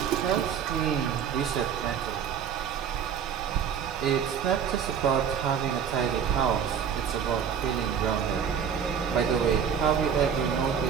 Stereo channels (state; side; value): quieter; left; 7.7 dB